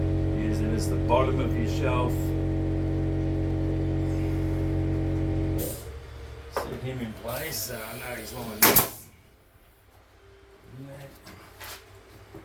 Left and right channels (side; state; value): both; identical; correlation 1.00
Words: Use it as the bottom of your shelf. Set him in place so I know he's lined up.